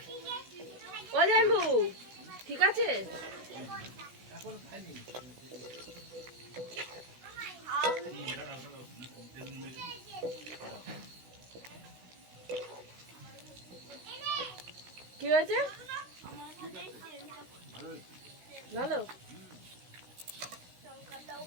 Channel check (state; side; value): late; left; 16 ms